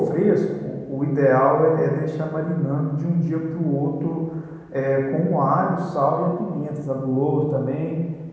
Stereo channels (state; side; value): identical; both; correlation 1.00